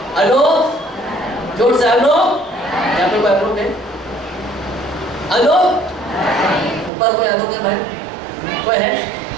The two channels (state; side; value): drops out; left; at 6.9 s